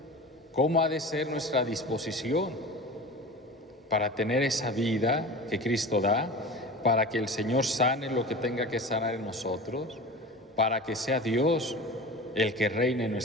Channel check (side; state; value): both; normal; correlation 0.34